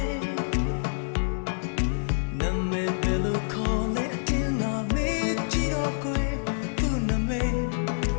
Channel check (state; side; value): silent; right; 60 dB below the other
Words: ဲ့နမဲဘယ်လိုခေါ်လဲအတင်းငါမေးကြည့်တော့ကွယ်သူ့နမဲ